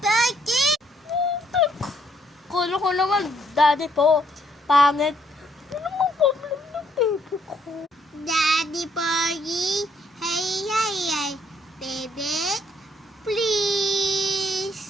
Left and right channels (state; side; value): normal; both; correlation 0.69